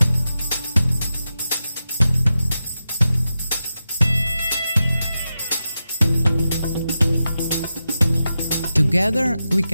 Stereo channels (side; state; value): both; inverted; correlation -0.90